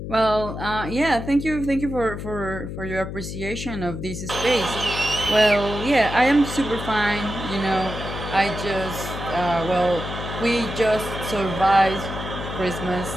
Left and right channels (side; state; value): left; noise; hum, 7 dB below the sound